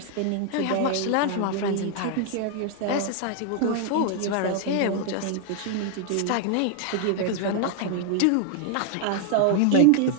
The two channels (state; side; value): different; both; correlation 0.00